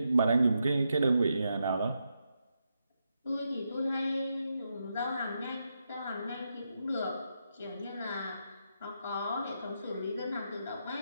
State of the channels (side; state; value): both; inverted; correlation -0.84